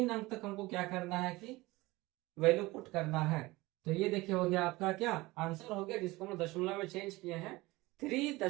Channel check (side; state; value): left; quieter; 20.8 dB